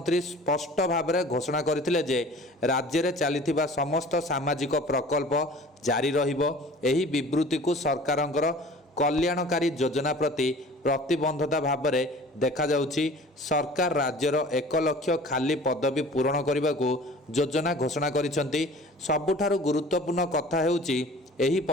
ସ୍ପଷ୍ଟ ଭାବରେ ଘୋଷଣା କରିଥିଲେ ଯେ ରାଜ୍ୟରେ ଚାଲିଥିବା ସମସ୍ତ ସାମାଜିକ ପ୍ରକଳ୍ପ ଜାରି ରହିବ। ଏହି ବିବୃତ୍ତିକୁ ସରକାରଙ୍କର କଲ୍ୟାଣକାରୀ ଯୋଜନା ପ୍ରତି ପ୍ରତିବଦ୍ଧତା ଭାବରେ ଦେଖାଯାଉଛି। ସରକାର ରାଜ୍ୟର 1 ଲକ୍ଷ ଖାଲି ପଦବୀ ପୂରଣ କରିବାକୁ ଯୋଜନା ଘୋଷଣା କରିଛନ୍ତି। ସବୁଠାରୁ ଗୁରୁତ୍ୱପୂର୍ଣ୍ଣ କଥା ହେଉଛି ଏହି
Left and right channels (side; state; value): both; normal; correlation 0.45